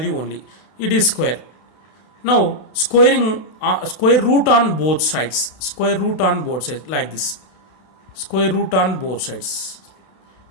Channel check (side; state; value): right; late; 32 ms